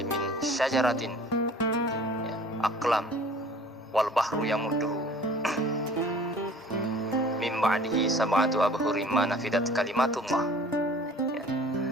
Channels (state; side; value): normal; both; correlation 0.49